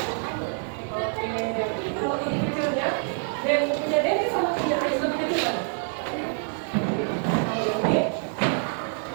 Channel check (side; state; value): left; silent; 56 dB below the other